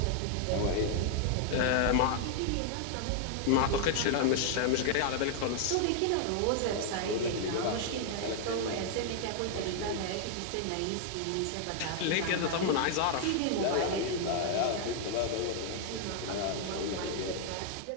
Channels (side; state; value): both; different; correlation 0.00